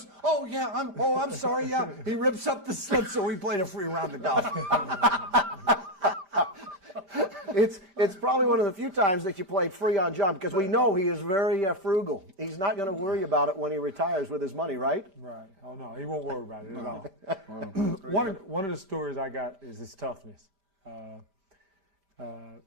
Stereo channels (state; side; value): late; left; 5.1 ms